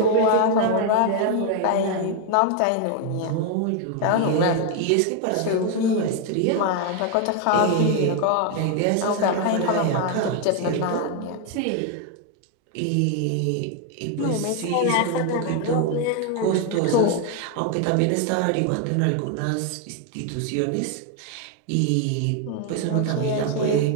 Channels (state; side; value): different; both; correlation 0.01